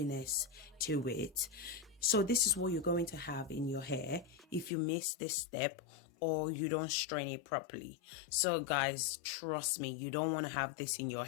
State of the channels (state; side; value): drops out; right; at 4.7 s